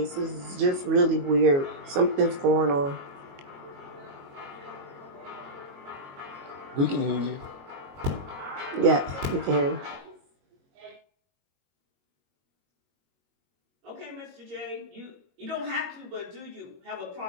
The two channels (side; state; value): left; late; 22 ms